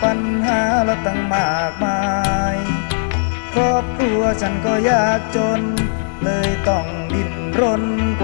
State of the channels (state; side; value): silent; right; 64 dB below the other